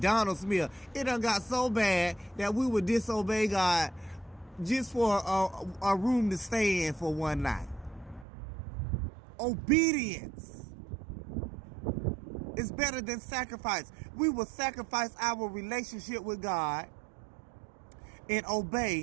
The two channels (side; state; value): left; drops out; at 8.2 s